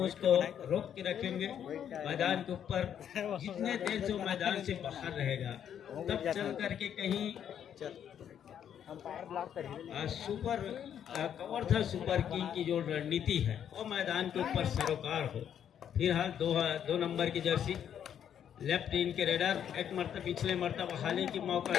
उसको रोक के रखेंगे मैदान के ऊपर। जितने देर से वो मैदान से बाहर रहेगा तब चल करके कहीं सुपर कवर था सुपर किंग की जो रणनीति है वो मैदान के ऊपर सरोकार हो। फिलहाल दो नंबर की जर्सी लेफ्ट इन के रेडर एक मरतबा पिछले मरतबा हाले की मौका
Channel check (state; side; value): quieter; right; 9.2 dB